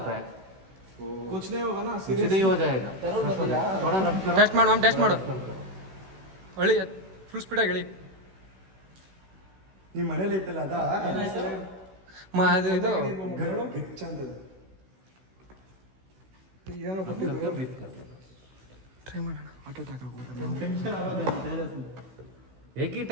है. तो कुछ नहीं होगा ना? कुछ नहीं हो जाएगा. थोड़ा रब करो. टेस्ट माಡು, टेस्ट माಡು. ಒಳ್ಳೆ ಫುಲ್ ಸ್ಪೀಡಾಗಿ ಹೇಳಿ. ನಿಮ್ಮ ಮನೇಲಿ ಐತಲ್ಲ ಅದ ಅದು ಇದು ಗಿಚ್ ಅಂತ ಏನೋ ಬ್ರೀತ್ कर. ಟ್ರೈ ಮಾಡೋಣ. ಆಟೋ ಅಟ್ಯಾಕ್ एक ही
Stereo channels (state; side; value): late; left; 16 ms